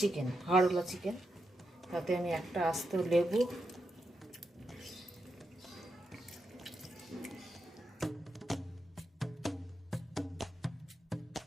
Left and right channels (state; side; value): normal; both; correlation 0.85